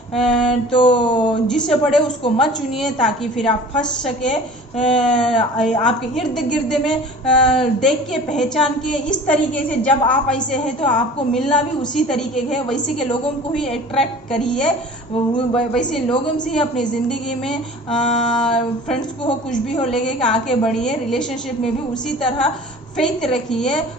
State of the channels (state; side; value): normal; both; correlation 0.43